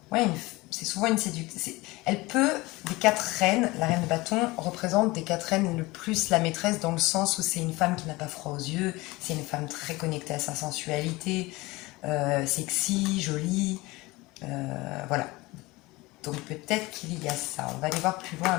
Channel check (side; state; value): right; quieter; 21.6 dB